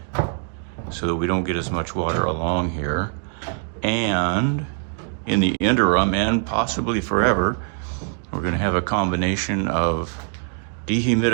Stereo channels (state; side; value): silent; left; 60 dB below the other